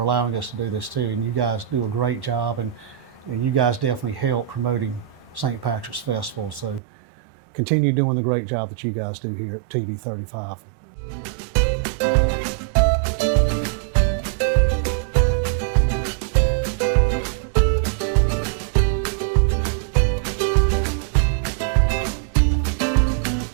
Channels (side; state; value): left; drops out; at 6.8 s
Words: allowing us to do this too, and you guys do a great job, and you guys definitely help promoting St. Patrick's Festival, so continue doing the great job that you guys do here at TV35.